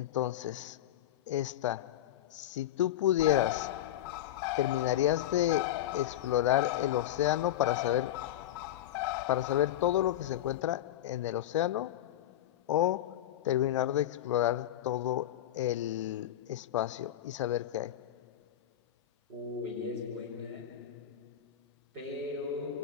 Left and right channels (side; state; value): right; quieter; 12.2 dB